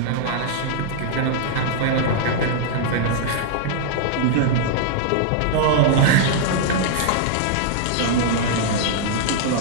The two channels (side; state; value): both; different; correlation -0.01